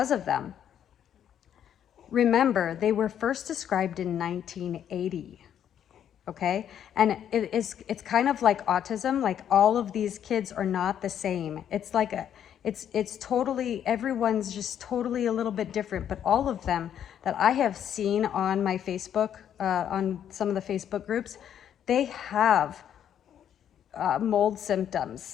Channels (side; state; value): right; quieter; 9.6 dB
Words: of them. Remember, they were first described in 1980. Okay, and it's kind of like autism. Like, all of these kids are not the same. It's like it's totally, everyone's just totally a little bit different. But all of them that I have seen on my Facebook, on some of the Facebook groups, they have mold